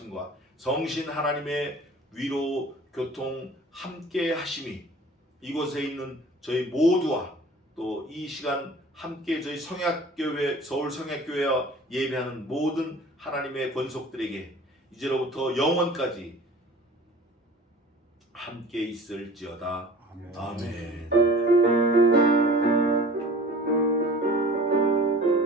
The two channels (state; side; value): normal; both; correlation 0.45